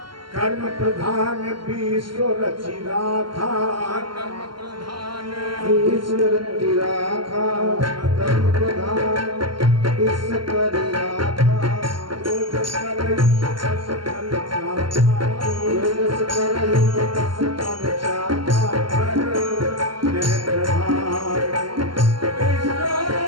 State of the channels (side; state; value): left; late; 0.72 ms